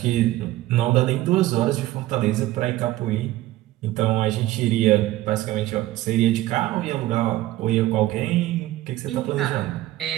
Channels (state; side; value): quieter; left; 16.1 dB